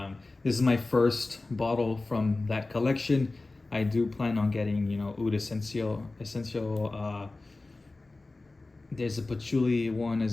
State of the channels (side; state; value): right; quieter; 3.2 dB